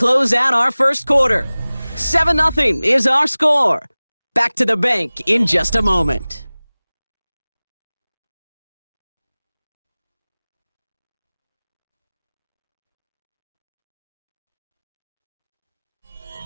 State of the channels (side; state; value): both; inverted; correlation -0.99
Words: out our first quarter. 7-0 is our score. Back to the bank in just a moment.